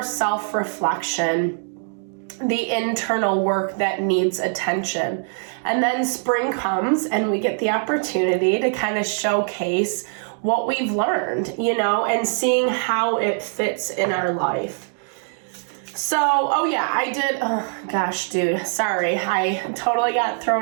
self-reflection, the internal work that needs attention. And then spring comes and we get the opportunity to kind of showcase what we've learned, and seeing how it fits in our life. So, I did, gosh, dude, sorry, I totally got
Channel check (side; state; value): left; silent; 64 dB below the other